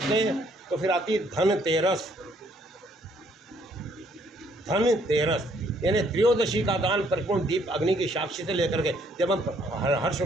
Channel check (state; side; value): normal; both; correlation 0.66